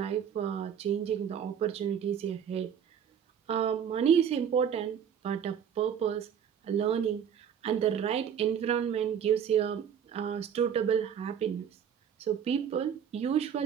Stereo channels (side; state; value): left; quieter; 8.2 dB